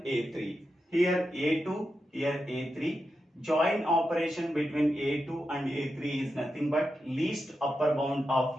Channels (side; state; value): both; normal; correlation 0.88